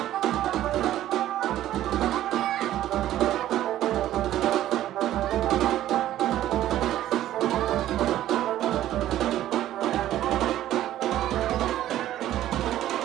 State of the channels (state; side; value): quieter; left; 13.1 dB